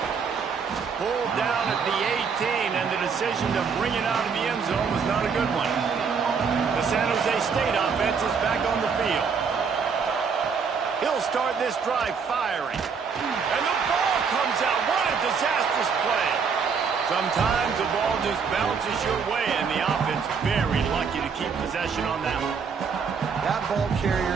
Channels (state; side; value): quieter; left; 5.9 dB